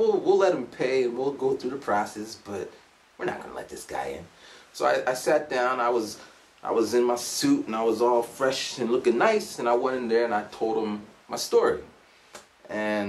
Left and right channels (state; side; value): identical; both; correlation 1.00